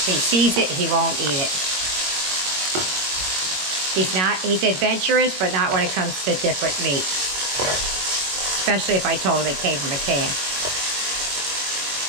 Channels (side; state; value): left; late; 22 ms